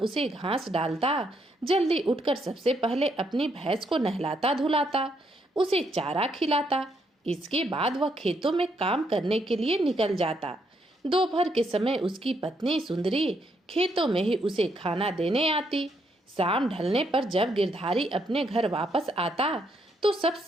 उसे घास डालता। जल्दी उठकर सबसे पहले अपनी भैंस को नहलाता धुलाता, उसे चारा खिलाता। इसके बाद वह खेतों में काम करने के लिए निकल जाता। दोपहर के समय उसकी पत्नी सुंदरी खेतों में ही उसे खाना देने आती। शाम ढलने पर जब गिरधारी अपने घर वापस आता तो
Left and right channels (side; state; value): both; normal; correlation 0.75